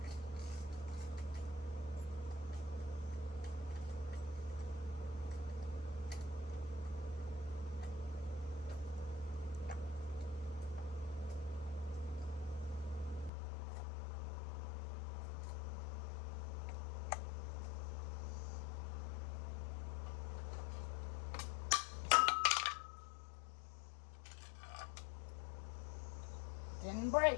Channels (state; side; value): drops out; right; at 13.3 s